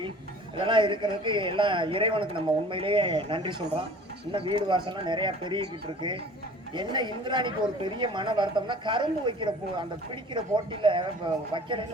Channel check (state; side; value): normal; both; correlation 0.46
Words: இதெல்லாம் இருக்கிறதுக்கு எல்லாம் இறைவனுக்கு நம்ம உண்மையிலேயே நன்றி சொல்றோம். இன்னும் வீடு வாசல்லாம் நிறைய பெருகிக்கிட்டு இருக்கு. என்ன இந்திராணிக்கு ஒரு பெரிய மன வருத்தம்னா, கரும்பு வைக்கிற அந்த பிடிக்கிற போட்டியில